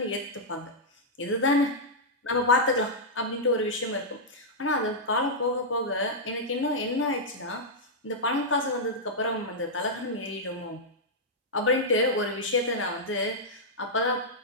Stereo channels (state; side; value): normal; both; correlation -0.08